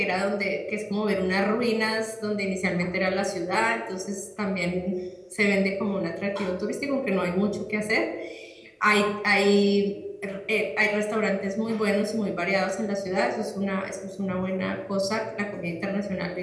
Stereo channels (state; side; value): identical; both; correlation 1.00